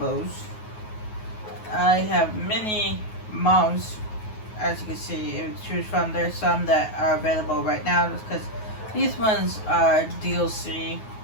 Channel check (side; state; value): right; late; 9.4 ms